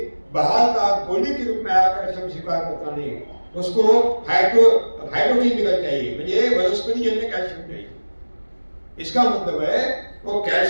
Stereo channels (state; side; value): inverted; both; correlation -1.00